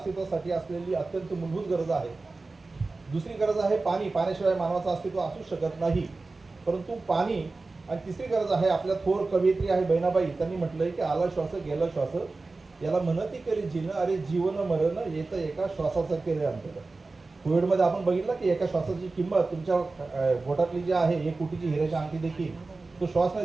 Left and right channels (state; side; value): quieter; left; 3.6 dB